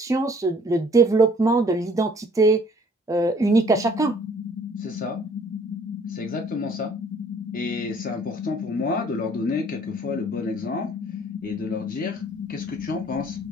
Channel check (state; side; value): normal; both; correlation 0.57